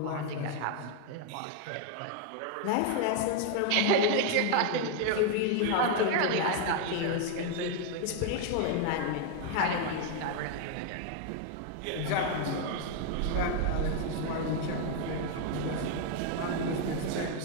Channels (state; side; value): different; both; correlation 0.00